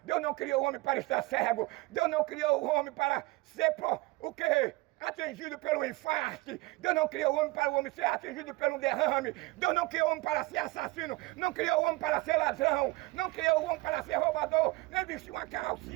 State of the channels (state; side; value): quieter; left; 22.0 dB